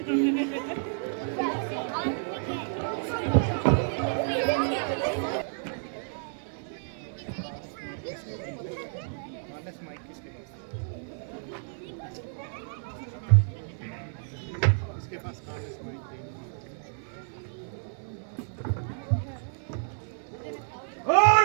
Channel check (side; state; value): left; silent; 56 dB below the other